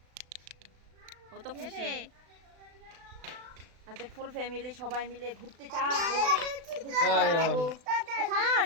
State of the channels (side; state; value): left; late; 36 ms